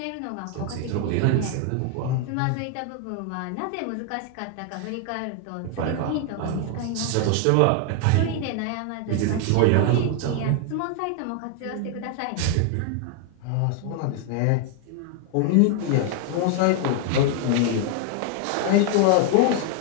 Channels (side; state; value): both; different; correlation 0.00